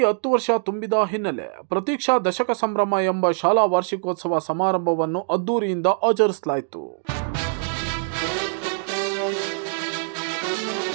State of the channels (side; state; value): left; silent; 63 dB below the other